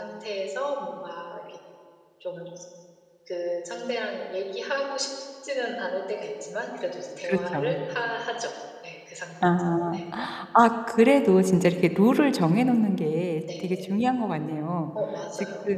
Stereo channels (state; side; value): identical; both; correlation 1.00